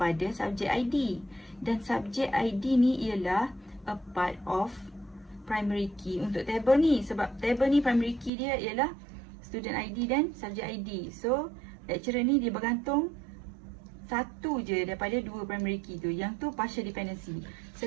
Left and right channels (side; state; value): left; drops out; at 8.3 s